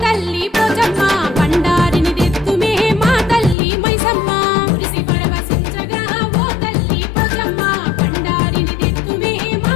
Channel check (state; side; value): drops out; right; at 3.6 s